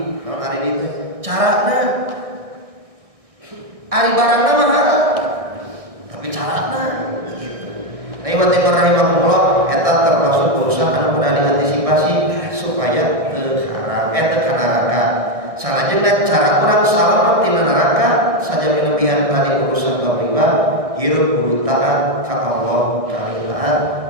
Haram aridi itu carana ari barangna mah haram, tapi carana gitu. Nah, ibu timur rahimahullah eta termasuk urusan anu kudu diantisipasi supaya teu haram teu kana neraka. Salajengna cara urang salamet tina neraka saja milebihan tadi urusan bab riba, hirup kudu taat ka Allah, kali taat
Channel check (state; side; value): late; left; 1.6 ms